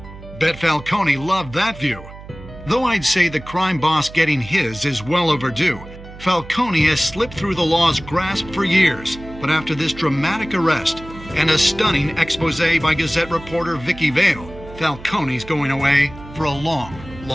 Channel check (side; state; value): right; noise; hum, 16 dB below the sound